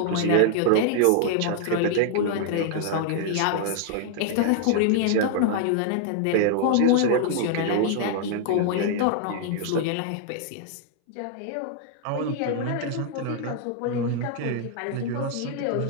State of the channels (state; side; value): different; both; correlation 0.00